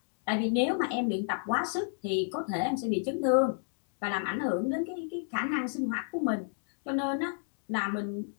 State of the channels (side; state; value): right; silent; digital silence